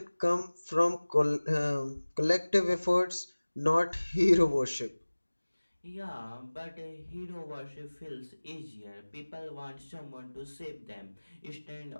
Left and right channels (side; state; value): both; inverted; correlation -1.00